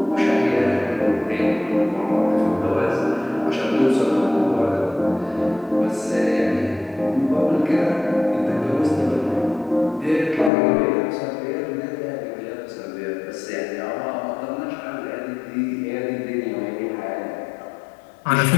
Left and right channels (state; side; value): drops out; right; at 10.5 s